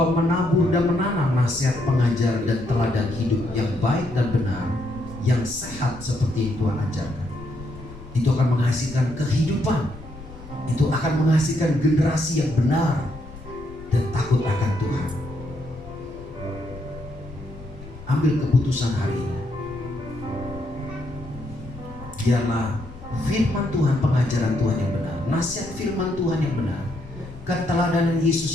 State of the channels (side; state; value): left; noise; rumble, 16 dB below the sound